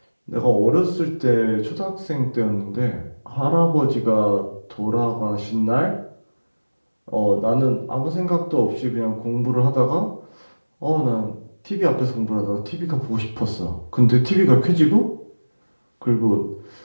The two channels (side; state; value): both; inverted; correlation -1.00